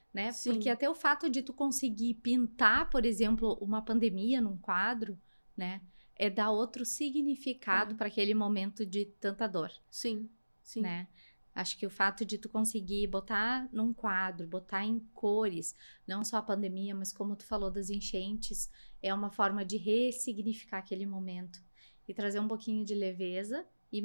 né? sim. Porque até o fato de tu conseguir pintar, por exemplo, uma pandemia num quadro, né? É dar outro significado para aquele momento de tanta dor, Sim, sim. né? Acho que o fato de tu conseguir botar num quadro, botar em cores, não só a pandemia, mas como tu falou das enchentes, é uma forma de ressignificar aquele momento e trazer um pouquinho de leveza e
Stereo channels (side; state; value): both; inverted; correlation -1.00